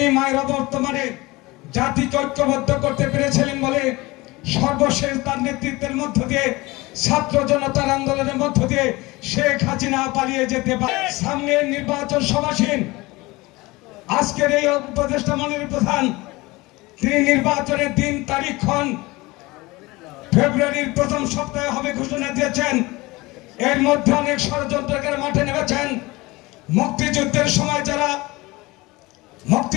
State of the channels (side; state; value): right; quieter; 21.8 dB